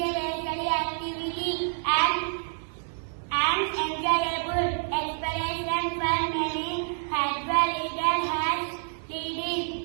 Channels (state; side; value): silent; left; digital silence